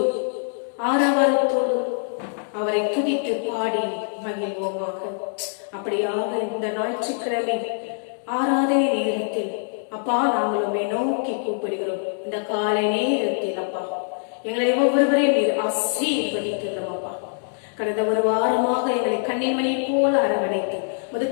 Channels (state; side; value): silent; right; digital silence